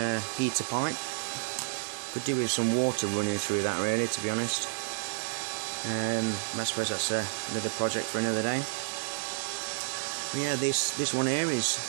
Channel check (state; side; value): silent; left; 57 dB below the other